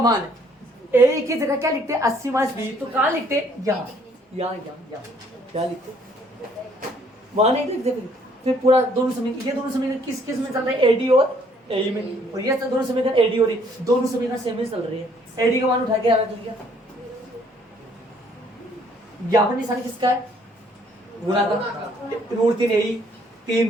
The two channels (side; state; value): both; normal; correlation 0.63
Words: ए की जगह क्या लिखते हैं, 80 माइनस बी, तो कहाँ लिखते, यहाँ क्या लिखते, वहां नहीं लिखते। फिर पूरा दोनों समीकरण, ये दोनों समीकरण किस में चल रहे हैं, एडी और ए में, और ये दोनों समीकरण एडी और दोनों समीकरण सेम ही चल रही है। एडी का मान उठा के रख लिया, यहाँ पर निशान किसका है, गुणा का, √3 ए,